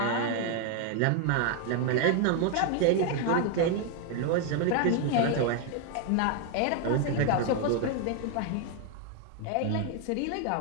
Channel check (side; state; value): both; different; correlation 0.01